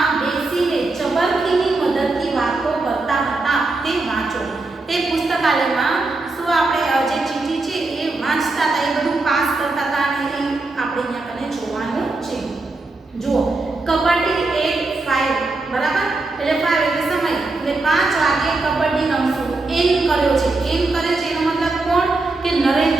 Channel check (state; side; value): quieter; left; 3.3 dB